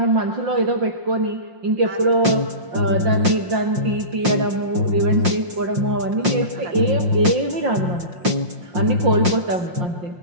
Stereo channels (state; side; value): late; left; 5.6 ms